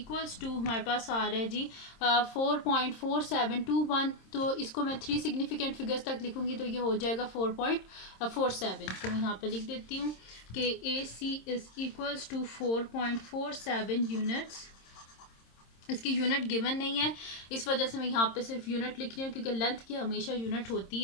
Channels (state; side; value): late; right; 26 ms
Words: to हमारे पास आ रहा है जी 4.4721। तो इसको मैं 3 सिग्निफिकेंट फिगर्स तक लिखूंगी तो ये हो जाएगा 4.47। तो मैं यहाँ पे लिख देती हूँ कि AC is equals to 4.47 units. इसकी यूनिट गिवन नहीं है, इस वजह से मैं यहाँ पे सिर्फ यूनिट लिख रही हूँ क्योंकि लेंथ की हमेशा यूनिट होती